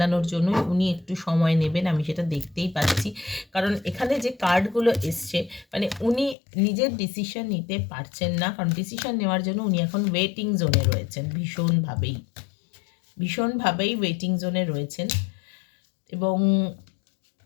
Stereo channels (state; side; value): drops out; right; at 6.4 s